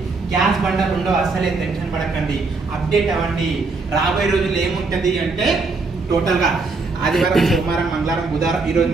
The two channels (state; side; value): quieter; left; 3.9 dB